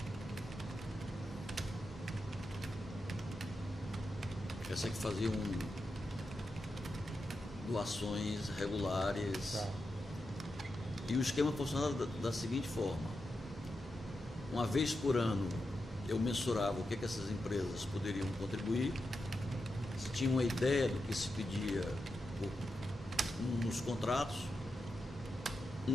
Essa que faziam doações regulares. Tá. E o esquema funcionava da seguinte forma: uma vez por ano eu mensurava o que essas empresas poderiam contribuir, se tinha uma ideia do que se pedia nos contratos,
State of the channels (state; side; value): normal; both; correlation 0.88